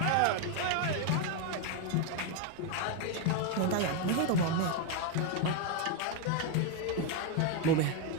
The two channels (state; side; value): different; both; correlation 0.01